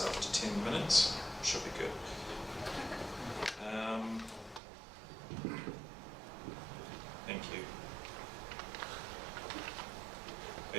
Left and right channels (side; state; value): left; drops out; at 4.6 s